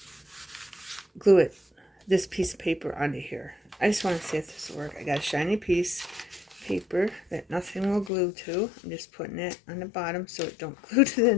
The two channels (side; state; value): right; drops out; at 8.1 s